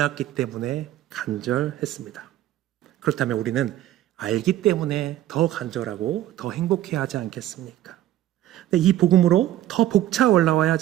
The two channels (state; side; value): quieter; left; 13.5 dB